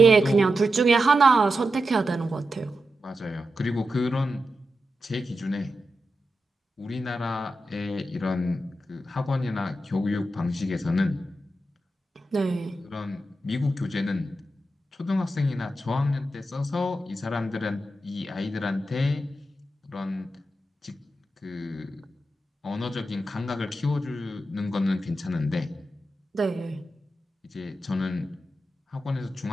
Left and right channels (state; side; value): normal; both; correlation 0.89